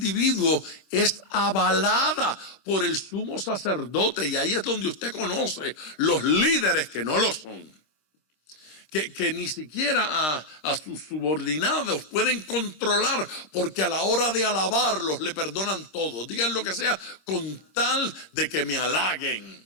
es avalada por el sumo sacerdote. Y ahí es donde usted conoce los líderes que no lo son. Que ni siquiera a sus subordinados pueden controlar, porque a la hora de alabarlos le perdonan todo. Digan lo que sea con tal de que me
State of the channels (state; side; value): late; right; 26 ms